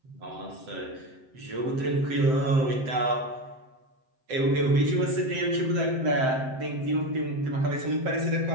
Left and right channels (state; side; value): late; left; 7.7 ms